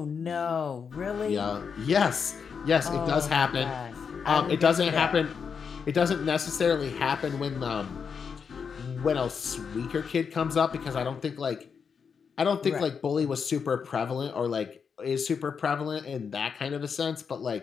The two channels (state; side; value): quieter; right; 6.2 dB